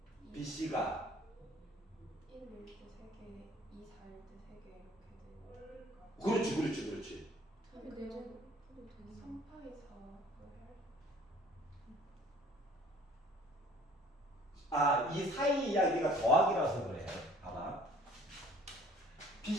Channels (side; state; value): both; normal; correlation 0.54